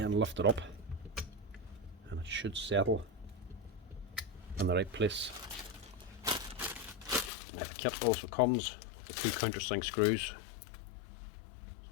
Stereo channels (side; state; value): right; drops out; at 7.3 s